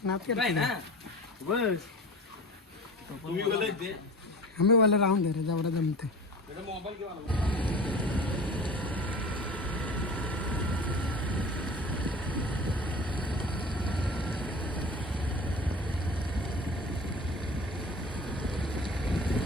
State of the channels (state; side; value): normal; both; correlation 0.37